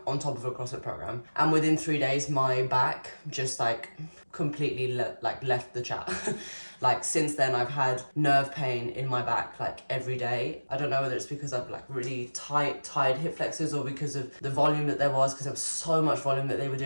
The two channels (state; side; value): inverted; both; correlation -1.00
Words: on top of a CrossFit program. And within 3 days, my back just like completely left the chat. Like since then, I've had nerve pain in my back like every day. I don't know whether it's because of like really tired hip flexors or because of the volume that there was, because there was so much volume that they were